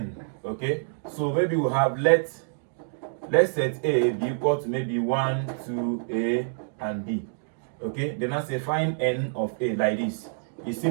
Okay, so maybe we have let set A be equal to maybe 1 2 A and B. Okay, then I say find n of A like this. It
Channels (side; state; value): left; silent; digital silence